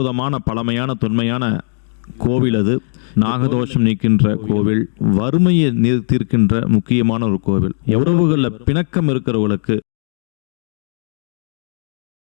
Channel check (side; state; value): right; silent; 68 dB below the other